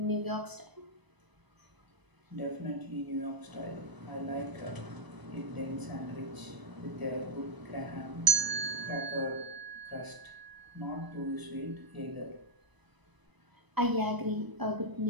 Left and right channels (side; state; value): left; late; 1.0 ms